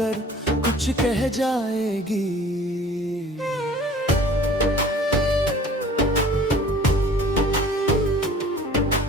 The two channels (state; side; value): normal; both; correlation 0.48